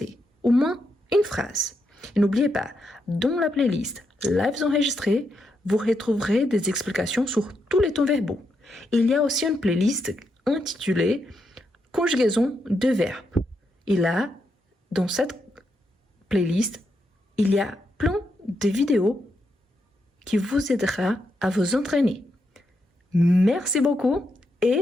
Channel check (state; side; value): normal; both; correlation 0.82